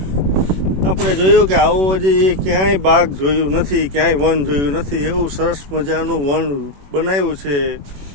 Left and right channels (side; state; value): left; late; 21 ms